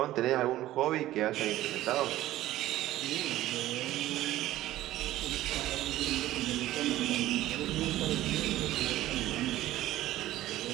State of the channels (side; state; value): left; quieter; 14.9 dB